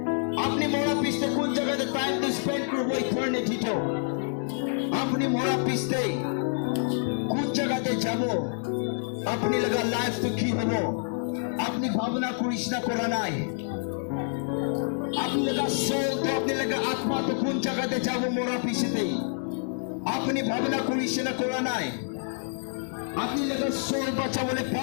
আপনি মোরা পিছতে কোন জায়গাতে টাইম তো স্পেন্ড করব ইটারনিটি তো আপনি মোরা পিছতে কোন জায়গাতে যাব আপনি লাগা লাইফ তো কি হবে আপনি ভাবনা করিস না করা নাই আপনি লাগা সোল তো আপনি লাগা আত্মা তো কোন জায়গাতে যাব মোরা পিছতে আপনি ভাবনা করিস না করা নাই আপনি লেগে সোল বাঁচা বলে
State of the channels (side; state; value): right; silent; digital silence